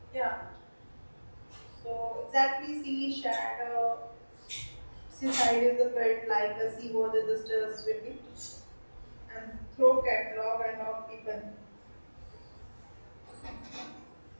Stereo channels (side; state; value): both; inverted; correlation -1.00